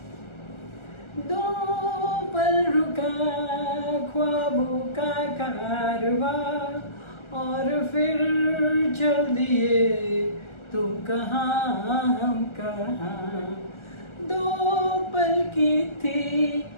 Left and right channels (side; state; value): right; late; 1.4 ms